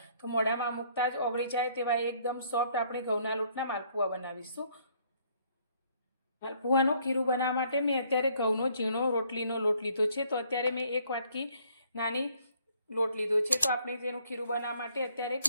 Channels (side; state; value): both; inverted; correlation -0.64